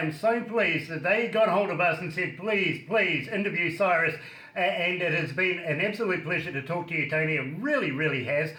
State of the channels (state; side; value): identical; both; correlation 1.00